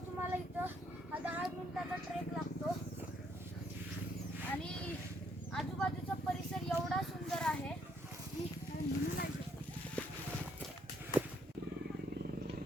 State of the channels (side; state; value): both; normal; correlation 0.70